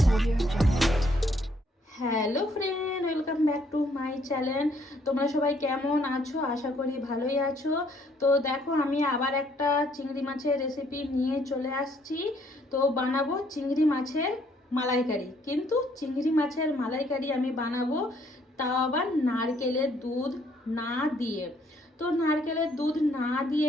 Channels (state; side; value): normal; both; correlation 0.67